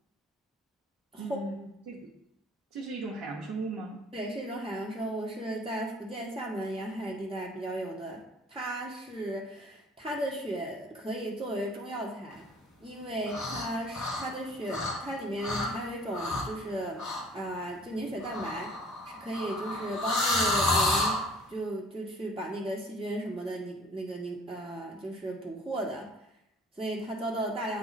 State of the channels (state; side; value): normal; both; correlation 0.52